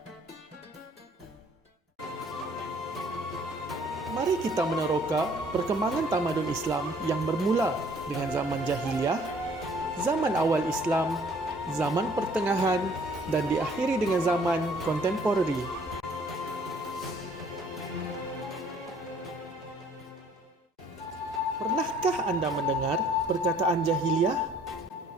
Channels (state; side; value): normal; both; correlation 0.59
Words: Mari kita meneroka perkembangan tamadun Islam yang bermula dengan zaman jahiliyah, zaman awal Islam, zaman pertengahan dan diakhiri dengan zaman kontemporari. Pernahkah anda mendengar perkataan jahiliyah?